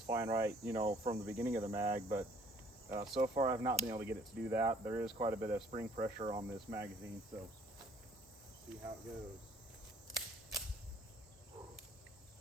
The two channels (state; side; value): normal; both; correlation 0.59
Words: fine right, you know, from the beginning of the mag, but so far I've not been able to get it to do that. There is quite a bit of spring pressure on this magazine, so see how it goes.